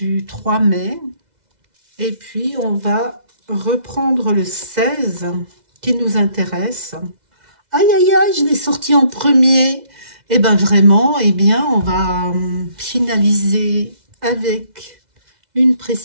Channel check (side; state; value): left; late; 2.0 ms